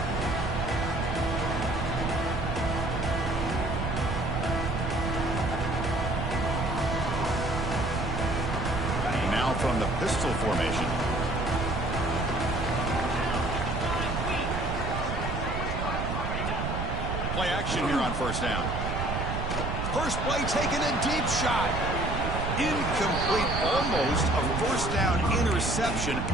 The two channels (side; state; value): right; noise; rumble, 2 dB below the sound